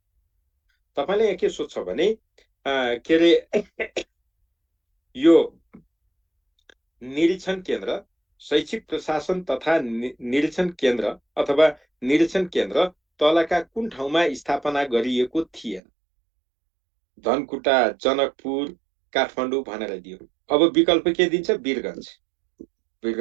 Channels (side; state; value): left; drops out; at 15.8 s